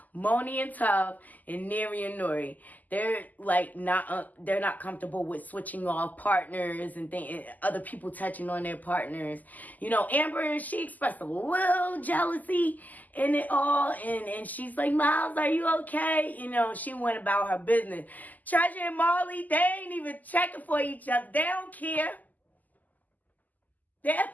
Moni and Tuff and Neri and Nori, they're like they're not comfortable with switching off partners and other people touching on their partners. You know, Amber, she expressed a little jealousy in it all, and she's like, Miles, are you okay? You know, she went about her business. Treasure and Marley, they ain't even checking for each other. They don't care. They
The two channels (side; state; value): right; late; 0.081 ms